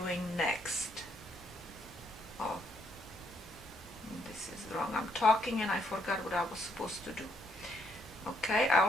next. Oh, this is wrong. I'm talking and I forgot what I was supposed to do. Okay,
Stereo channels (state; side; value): normal; both; correlation 0.72